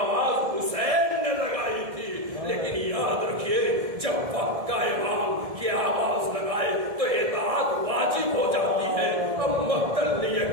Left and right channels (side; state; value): left; late; 1.7 ms